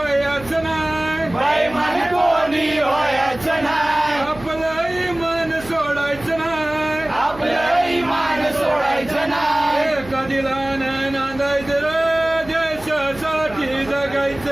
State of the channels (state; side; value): noise; right; hum, 18 dB below the sound